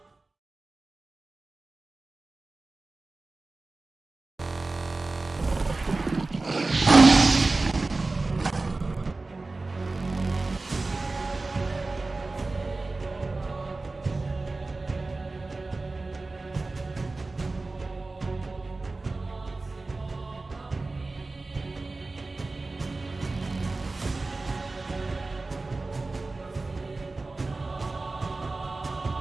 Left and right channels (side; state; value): left; quieter; 3.4 dB